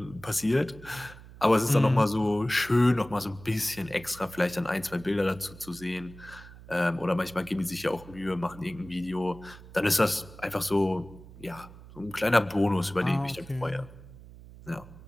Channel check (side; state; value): right; noise; hum, 18 dB below the sound